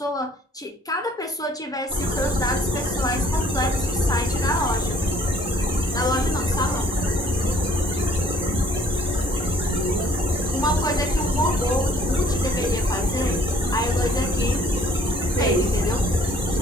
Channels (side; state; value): both; normal; correlation 0.59